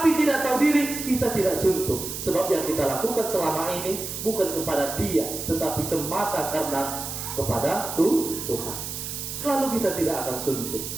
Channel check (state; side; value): noise; right; hiss, 6 dB below the sound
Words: tidak tahu diri, kita tidak suntuk. Sebab yang kita lakukan selama ini bukan kepada dia, tetapi semata karena kepada Tuhan. Lalu kita tidak akan suntuk.